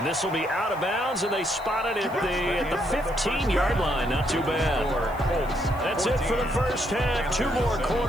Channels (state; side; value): noise; left; hiss, 24 dB below the sound